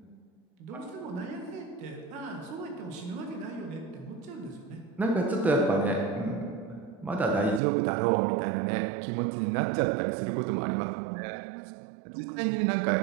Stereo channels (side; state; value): left; drops out; at 7.6 s